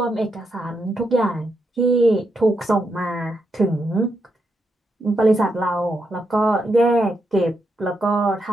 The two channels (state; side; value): normal; both; correlation 0.82